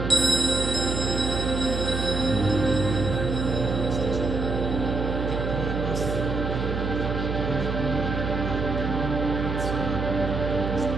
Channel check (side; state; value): right; noise; hum, 2 dB below the sound